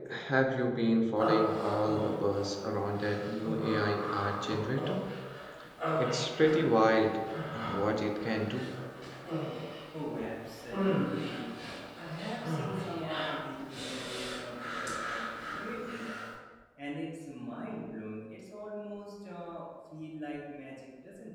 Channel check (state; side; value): identical; both; correlation 1.00